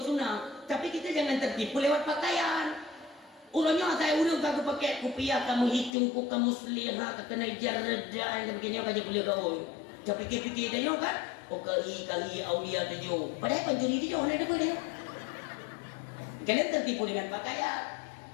sunnah tapi kita jangan tertipu lewat pakaian urangnya saya urang ka pakai kopiah kamu hitung ku kamu selihah ka kena jarda yang begini ka je boleh kau tapi fikir dia kan oh kali aulia dia padahal pencuri dia mana ada dia. Kalian tertipu dengan pakaian.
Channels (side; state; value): right; drops out; at 5.9 s